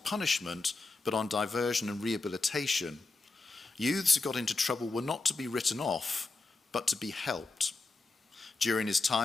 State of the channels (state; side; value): quieter; right; 3.6 dB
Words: but on diversion and rehabilitation. Youths who got into trouble were not to be written off, but to be helped. During his